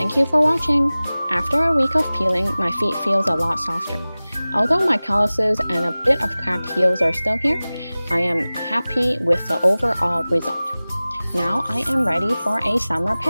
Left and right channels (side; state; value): both; inverted; correlation -0.98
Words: you for watching. After a week of peeling, my feet feels a lot softer. Although my calluses and a bit of cracked heels are still here, I am happy with the overall result. Now I am ready for a summer